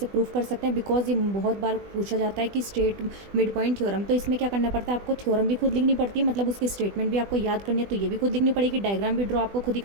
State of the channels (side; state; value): left; late; 20 ms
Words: प्रूव कर सकते हैं। बिकॉज ये बहुत बार पूछा जाता है कि स्ट्रेट मिड पॉइंट थ्योरम, तो इसमें क्या करना पड़ता है, आपको थ्योरम भी खुद लिखनी पड़ती है, मतलब उसकी स्टेटमेंट भी आपको याद करनी है, तो ये भी खुद लिखनी पड़ेगी। डायग्राम भी ड्रॉ आपको खुद ही